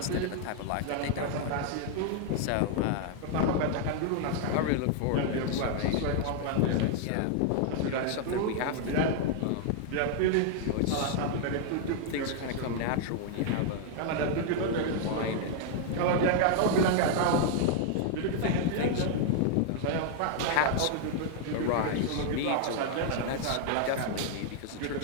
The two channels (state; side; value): different; both; correlation 0.00